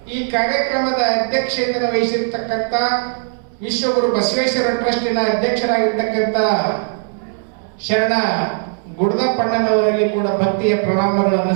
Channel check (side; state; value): left; silent; digital silence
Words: ಈ ಕಾರ್ಯಕ್ರಮದ ಅಧ್ಯಕ್ಷತೆಯನ್ನು ವಹಿಸಿರ್ತಕ್ಕಂಥ ವಿಶ್ವಗುರು ಬಸವೇಶ್ವರ ಟ್ರಸ್ಟಿನ ಅಧ್ಯಕ್ಷರಾಗಿರ್ತಕ್ಕಂಥ ಶರಣ ಗುಡದಪ್ಪಣ್ಣನವರಲ್ಲಿ ಕೂಡ ಭಕ್ತಿಯ ಪ್ರಣಾಮಗಳನ್ನು